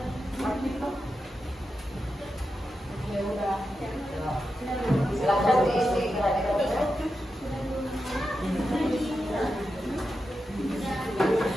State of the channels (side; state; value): both; normal; correlation 0.89